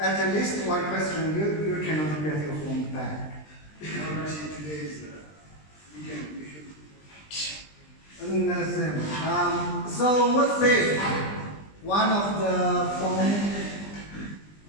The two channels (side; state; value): right; late; 20 ms